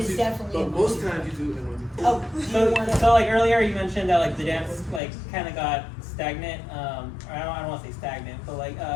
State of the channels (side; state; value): right; drops out; at 5.0 s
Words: is you, definitely but in most one, two, times you do it in one, two, three. oh, do you So, want to? so like earlier you mentioned that like the dance like kind of got stagnant. Or I don't want to say stagnant, but like